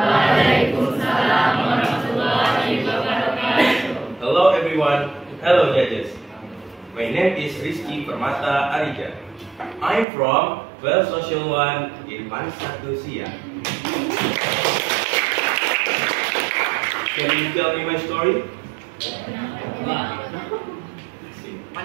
warahmatullahi wabarakatuh. Hello everyone. Hello judges. My name is Rizky Permata Arija. I'm from 12 Social 1 in Manisatu Siak. Can you tell me my story?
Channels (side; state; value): left; drops out; at 10.1 s